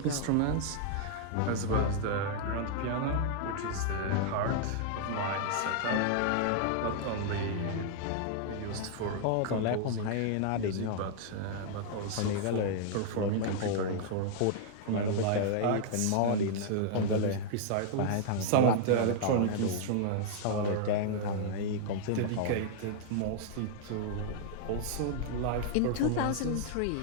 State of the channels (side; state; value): both; different; correlation -0.01